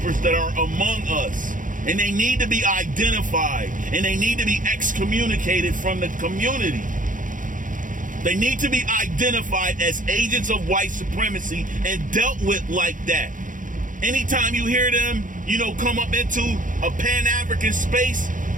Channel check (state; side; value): late; left; 0.38 ms